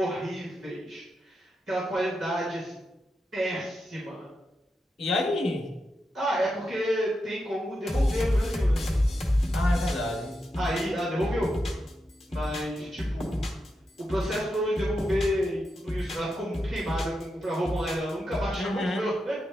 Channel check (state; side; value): normal; both; correlation 0.87